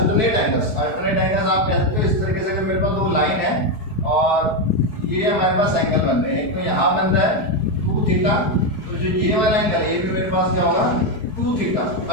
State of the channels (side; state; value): right; late; 4.7 ms